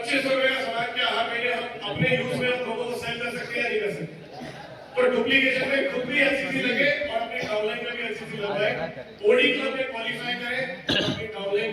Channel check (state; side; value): identical; both; correlation 1.00